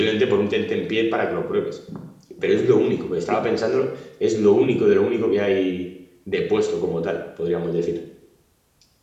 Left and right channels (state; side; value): identical; both; correlation 1.00